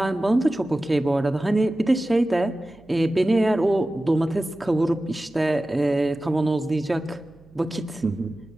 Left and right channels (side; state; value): right; noise; hum, 27 dB below the sound